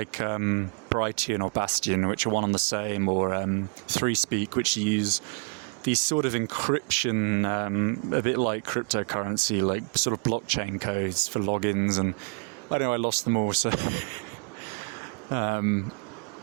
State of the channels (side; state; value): left; quieter; 39.1 dB